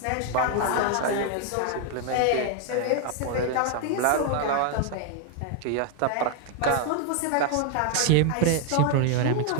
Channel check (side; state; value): both; different; correlation 0.01